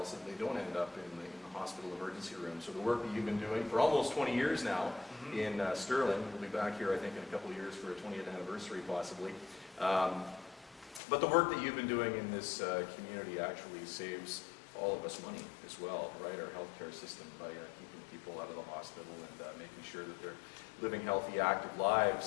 so that they don't end up in the hospital emergency room. So the work that you've been doing for almost 20 years now in Stirling, we'll be back here I think in a couple of years for a 20th anniversary possibly, but the work that you've been doing in this community actually saves all of us money as well, right? Our healthcare system, by keeping people out of the hospital and making sure that they're living healthy, active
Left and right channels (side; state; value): right; drops out; at 11.0 s